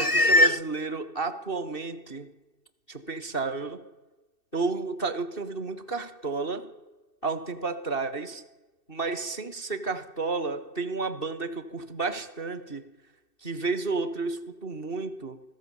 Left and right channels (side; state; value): right; late; 2.6 ms